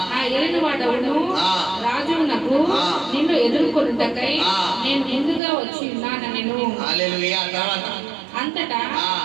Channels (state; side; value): drops out; left; at 5.4 s